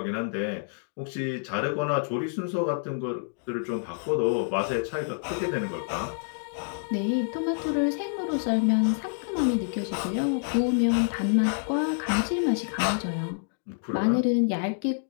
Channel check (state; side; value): silent; right; digital silence